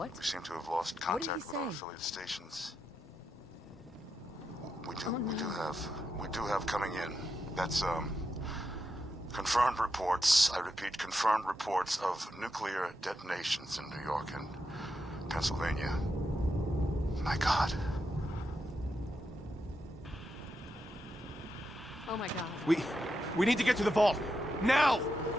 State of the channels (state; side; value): normal; both; correlation 0.85